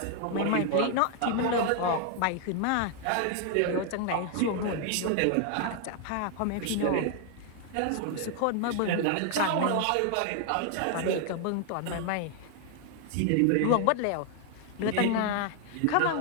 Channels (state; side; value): different; both; correlation 0.00